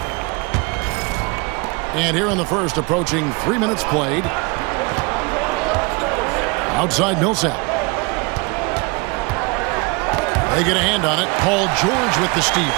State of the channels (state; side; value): quieter; left; 29.2 dB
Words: And here in the first, approaching 3 minutes played. Outside Millsap. They get a hand on it. Paul George with the steal.